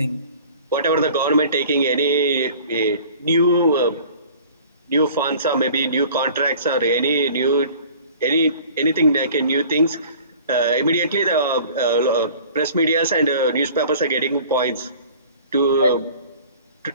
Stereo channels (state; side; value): inverted; both; correlation -0.47